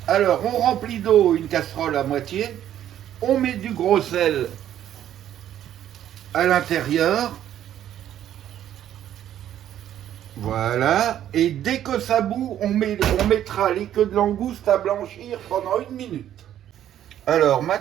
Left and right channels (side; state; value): left; quieter; 11.2 dB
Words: Alors, on remplit d'eau une casserole à moitié, on met du gros sel à l'intérieur, voilà, et dès que ça bout, on mettra les queues de langouste à blanchir pendant 1 minute. Alors,